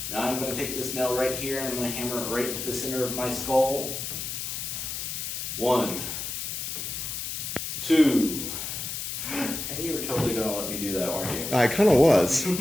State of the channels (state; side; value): noise; left; hiss, 4 dB below the sound